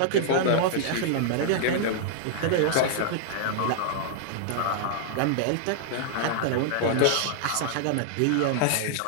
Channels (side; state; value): both; different; correlation -0.01